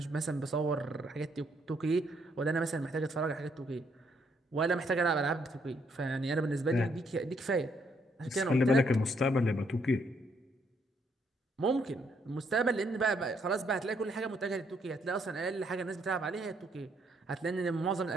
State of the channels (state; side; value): normal; both; correlation 0.71